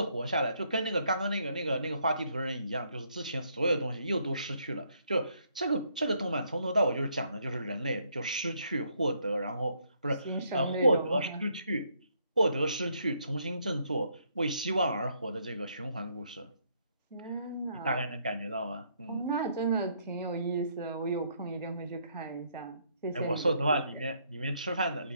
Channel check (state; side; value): inverted; both; correlation -0.72